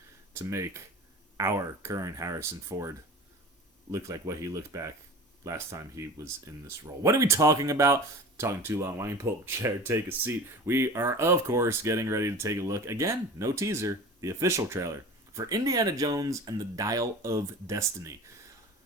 to make our current Harrison Ford look like what he looked back last time he was in this role. What are we talking about? Talking too long. Why don't you pull up a chair, take a seat? We are, of course, getting ready to take a look. Again, no teaser, the official trailer for Indiana Jones and the Dial of Destiny.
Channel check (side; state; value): both; normal; correlation 0.37